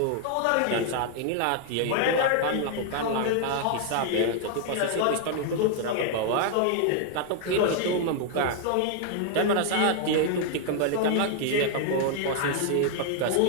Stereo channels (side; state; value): both; different; correlation 0.00